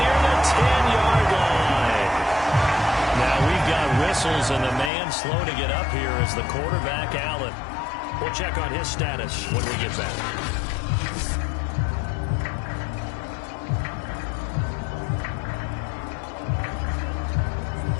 the 10-yard line. Now we've got whistles, and the man slow to get up here is the quarterback, Allen. We'll check on his status when we get back.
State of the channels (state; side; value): drops out; right; at 4.9 s